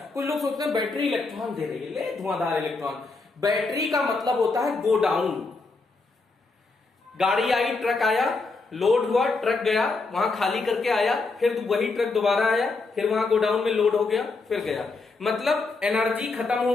कुछ लोग सोचते हैं बैटरी इलेक्ट्रॉन दे रही है, ले धुआंधार इलेक्ट्रॉन। बैटरी का मतलब होता है गो डाउन। गाड़ी आई, ट्रक आया, लोड हुआ, ट्रक गया, वहां खाली करके आया, फिर वही ट्रक दोबारा आया, फिर वहां गोडाउन में लोड हो गया, फिर गया। मतलब एनर्जी खत्म हो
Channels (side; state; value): right; quieter; 3.8 dB